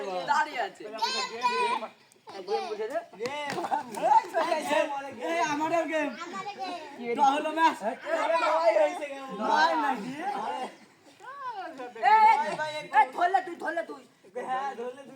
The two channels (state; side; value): identical; both; correlation 1.00